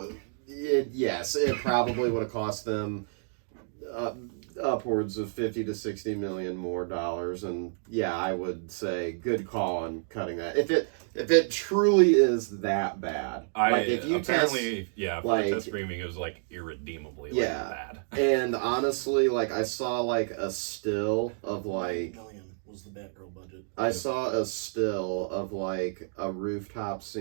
it probably would have cost them upwards of 50 to 60 million more dollars, and yeah, I would say good call on cutting that. If it truly is that bad, like if you apparently for like- the test screaming, it was like irredeemably bad. and honestly, like I saw like a still of like. $1 million was the Batgirl budget. I saw a still of like a rooftop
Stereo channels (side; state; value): left; silent; digital silence